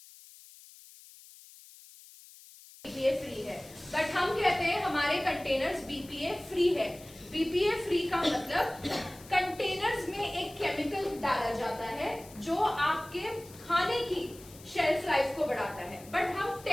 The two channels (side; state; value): left; noise; hiss, 20 dB below the sound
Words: फ्री है, बट हम कहते हैं हमारे कंटेनर्स बीपीए फ्री है। बीपीए फ्री का मतलब कंटेनर्स में एक केमिकल डाला जाता है जो आपके खाने की शेल्फ लाइफ को बढ़ाता है। बट हम